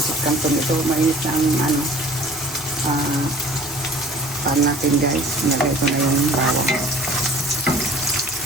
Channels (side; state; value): both; normal; correlation 0.48